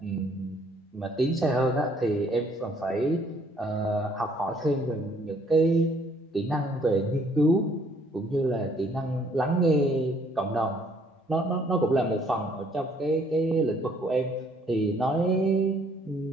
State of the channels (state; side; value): normal; both; correlation 0.63